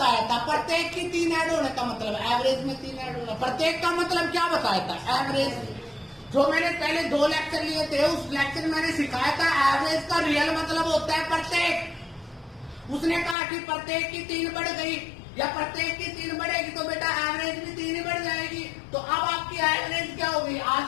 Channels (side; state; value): right; drops out; at 13.4 s